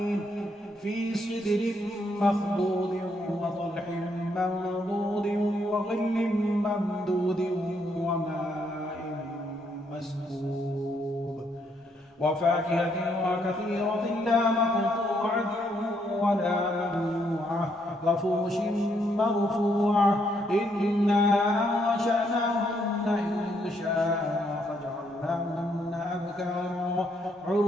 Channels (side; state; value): both; normal; correlation 0.73